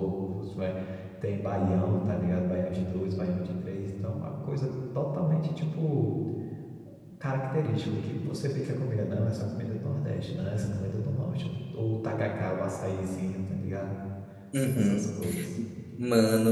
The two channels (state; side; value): identical; both; correlation 1.00